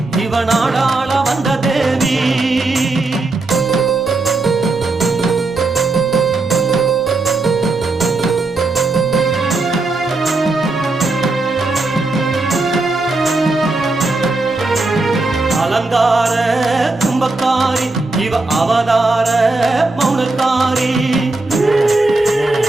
இவ நாடாள வந்த தேவி அலங்கார கும்பக்காரி இவ அவதார மௌனக்காரி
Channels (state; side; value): quieter; left; 3.3 dB